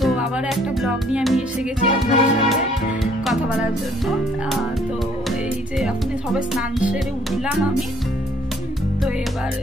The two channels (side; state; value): both; normal; correlation 0.62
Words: আবার একটা ব্লগ নিয়ে আমি এসে গেছি আপনাদের সাথে কথা বলার জন্য। তো এই যে এখন সবাই স্নান সেরে উঠলাম আমি। তো এবার